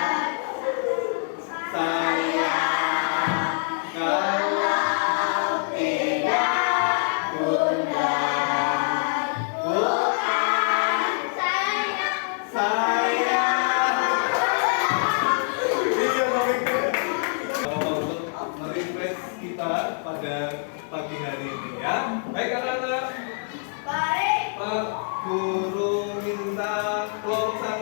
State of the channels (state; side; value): silent; right; 62 dB below the other